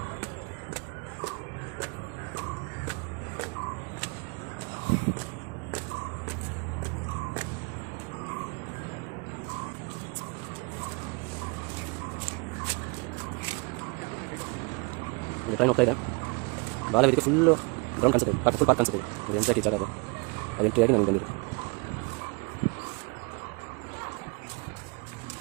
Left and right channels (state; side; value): quieter; left; 30.9 dB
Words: ಟ್ರೈನ್ ಹೋಗ್ತಾ ಇದೆ. ಬಾಲವೇದಿಕೆ ಫುಲ್ಲು ಗ್ರೌಂಡ್ ಕಾಣಿಸುತ್ತೆ, ಫುಲ್ ಪಾರ್ಕ್ ಕಾಣಿಸುತ್ತೆ. ಅದು ಎಂಟ್ರಿ ಜಾಗ ಅದು ಎಂಟ್ರಿಯಾಗಿ ನನಗೆ ಬಂದಿದೆ.